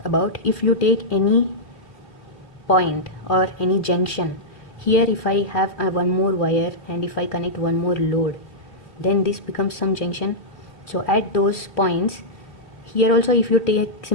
about if you take any point or any junction. Here if I have one more wire and if I connect one more load, then this becomes some junction. So at those points, here also if you take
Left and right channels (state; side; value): late; right; 2.9 ms